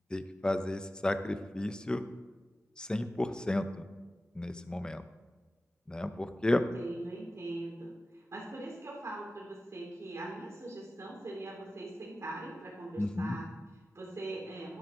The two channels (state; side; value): normal; both; correlation 0.94